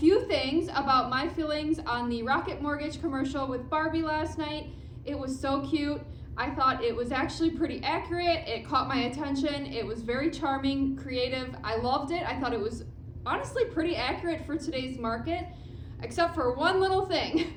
things about my feelings on the Rocket Mortgage commercial with Barbie last night. It was so cute. I thought it was actually pretty accurate. It caught my attention. It was very charming, creative. I loved it. I thought it was honestly pretty accurate for today's market, except for one little thing,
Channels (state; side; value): identical; both; correlation 1.00